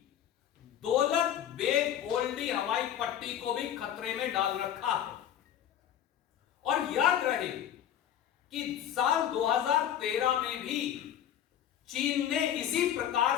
दौलत बेग ओल्डी हवाई पट्टी को भी खतरे में डाल रखा है। और याद रहे कि साल 2013 में भी चीन ने इसी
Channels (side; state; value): right; quieter; 10.3 dB